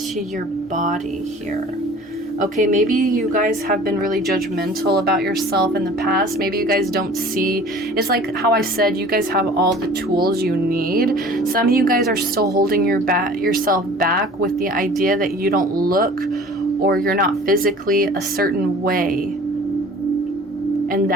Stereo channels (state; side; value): normal; both; correlation 0.46